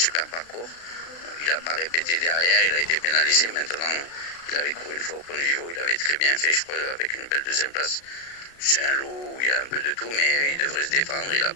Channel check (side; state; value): right; late; 35 ms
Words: parcours. Il n'a pas répété derrière, il a été pénalisé. Maintenant, il avait couru une fois au Pont de Vivo, il avait très bien fait, je crois, avec une belle 2e place. C'est un lot où il y a un peu de tout, mais il devrait se défendre, il n'a